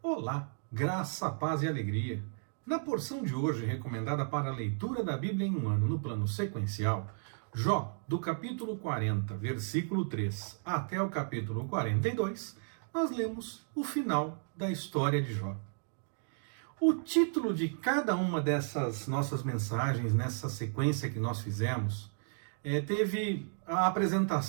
Olá, graça, paz e alegria. Na porção de hoje, recomendada para a leitura da Bíblia em um ano no plano sequencial, Jó, do capítulo 40, versículo 3, até o capítulo 42, nós lemos o final da história de Jó. O título de cada uma dessas nossas mensagens, nessa sequência que nós fizemos, teve a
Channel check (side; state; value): left; silent; digital silence